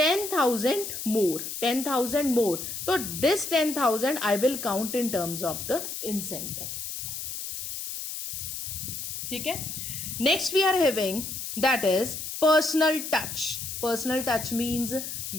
more. 10,000 more. तो this 10,000 I will count in terms of the incentive. ठीक है, next we are having that is personal touch. Personal touch means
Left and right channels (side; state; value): left; noise; hiss, 6 dB below the sound